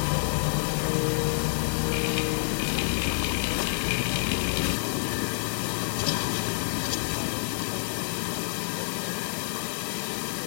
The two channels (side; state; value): right; silent; digital silence